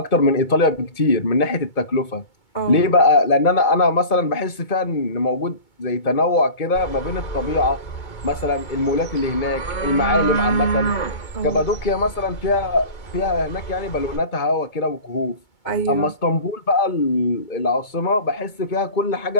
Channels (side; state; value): right; late; 2.2 ms